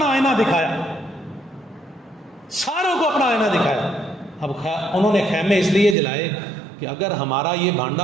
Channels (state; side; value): drops out; left; at 6.0 s